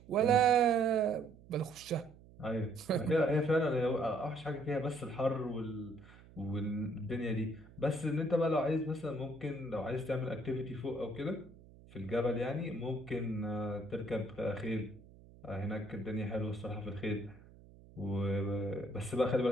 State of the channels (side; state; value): right; noise; hum, 22 dB below the sound